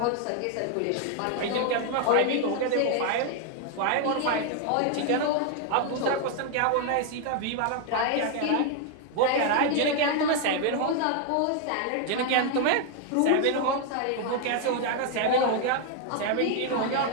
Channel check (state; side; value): different; both; correlation 0.00